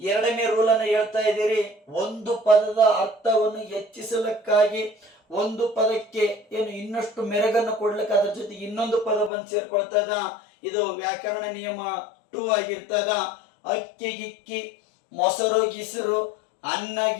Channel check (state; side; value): drops out; right; at 9.3 s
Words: ರೂಲ್ ಅನ್ನು ಹೇಳ್ತಾ ಇದ್ದೀರಿ. ಒಂದು ಪದದ ಅರ್ಥವನ್ನು ಹೆಚ್ಚಿಸಲಿಕ್ಕಾಗಿ ಒಂದು ಪದಕ್ಕೆ ಏನು ಇನ್ನಷ್ಟು ಮೆರಗನ್ನು ಕೊಡ್ಲಿಕ್ಕೆ ಅದ್ರ ಜೊತೆಗೆ ಇನ್ನೊಂದು ಪದ ಬಂದು ಸೇರ್ಕೊಳ್ತದ. ಇದು ವ್ಯಾಕರಣ ನಿಯಮ 2 ಆಗಿರ್ತದ. ಅಕ್ಕಿ ಗಿಕ್ಕಿ, ಮೊಸರು ಗಿಸರು, ಅನ್ನ